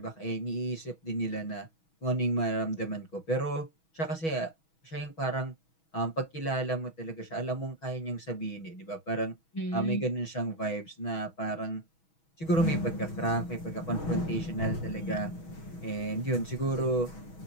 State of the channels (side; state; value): right; late; 6.2 ms